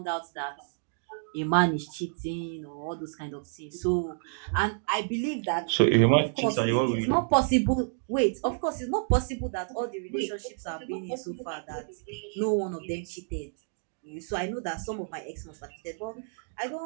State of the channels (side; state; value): left; silent; digital silence